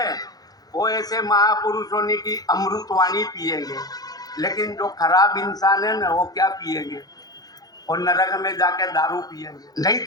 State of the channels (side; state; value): right; late; 0.19 ms